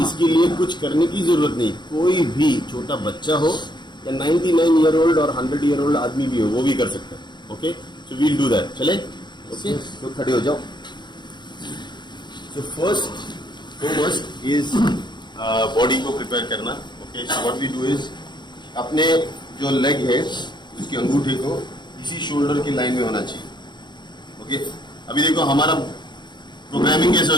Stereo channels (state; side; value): late; right; 0.22 ms